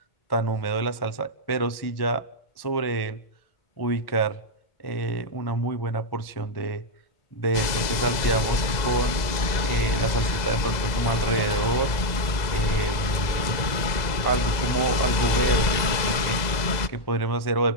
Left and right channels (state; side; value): late; right; 2.0 ms